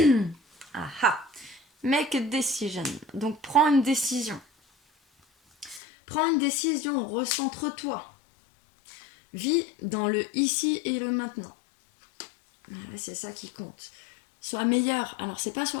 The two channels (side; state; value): right; drops out; at 5.8 s